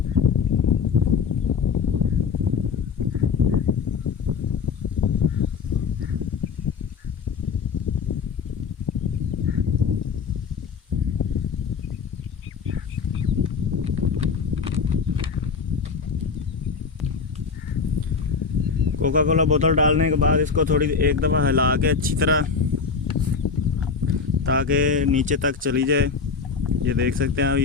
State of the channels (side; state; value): right; quieter; 5.4 dB